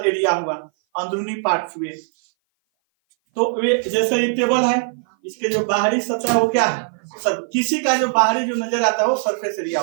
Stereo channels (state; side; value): silent; left; 58 dB below the other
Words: एरिया हुआ, अंदरूनी पार्ट हुए। तो वे जैसे ये टेबल है, इसके जो बाहरी सतह वो क्या है? किसी का जो बाहरी जो नजर आता है वो सरफेस एरिया